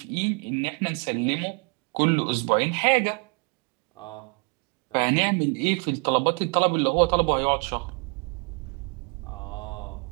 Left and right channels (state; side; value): quieter; left; 34.4 dB